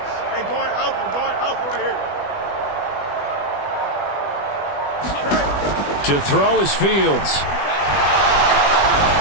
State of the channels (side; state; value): right; late; 20 ms